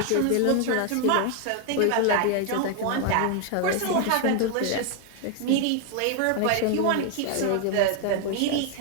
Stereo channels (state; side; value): different; both; correlation 0.01